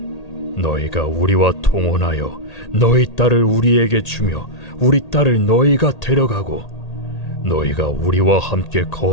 너희가 우리와 통혼하여 너희 딸을 우리에게 주며 우리 딸을 너희가 데려가고 너희가 우리와 함께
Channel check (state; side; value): late; right; 1.8 ms